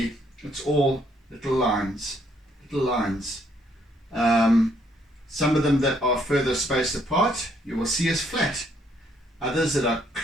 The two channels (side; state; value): both; normal; correlation 0.69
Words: it's all little lines. Some of them that are further spaced apart, you will see as flat. Others that are